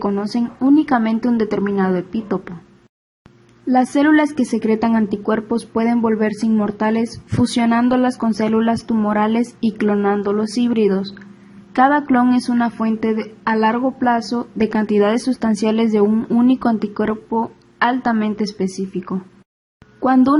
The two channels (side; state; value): both; identical; correlation 1.00